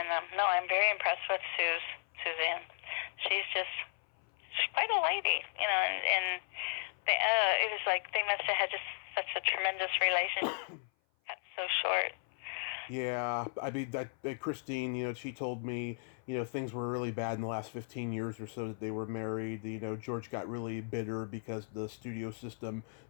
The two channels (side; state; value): right; silent; 54 dB below the other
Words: no, I'm very impressed with Suzanne. She's quite a lady, and it was like they must have had just such a tremendous relationship. Got so short. Yeah, I mean, Christine, she told me, things were really bad in the last 15 years or so that they were married. George got really bitter because the studio system